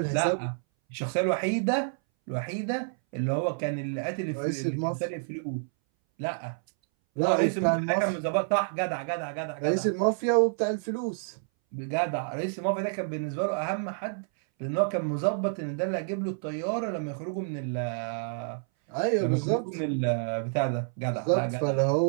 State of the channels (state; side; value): silent; left; 59 dB below the other